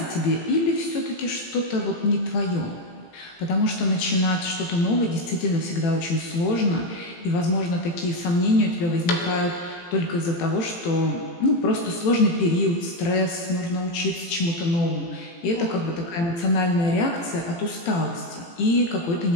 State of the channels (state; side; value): late; right; 18 ms